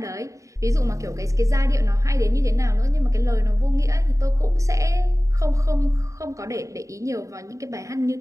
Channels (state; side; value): late; left; 0.16 ms